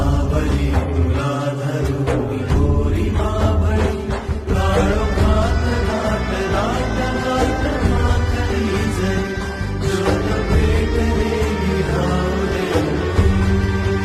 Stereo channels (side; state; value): both; identical; correlation 1.00